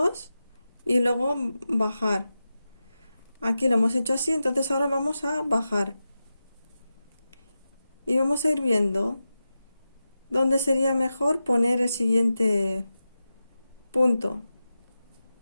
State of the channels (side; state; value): both; inverted; correlation -0.92